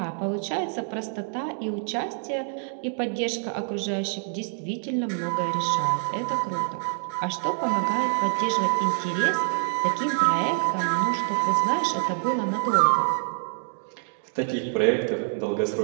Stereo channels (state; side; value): silent; left; 61 dB below the other